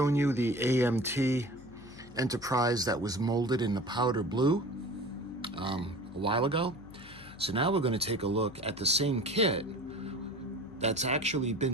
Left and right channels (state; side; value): noise; left; hum, 20 dB below the sound